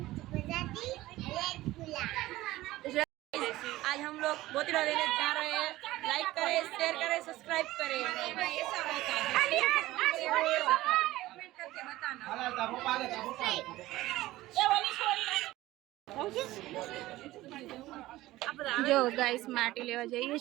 आज हम लोग बोतला लेने जा रहे हैं। लाइक करें, शेयर करें, सब्सक्राइब करें। ऐसा होता है कमेंट करके बताना। जो गाइस माटी लेवा जाइए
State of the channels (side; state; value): left; quieter; 17.0 dB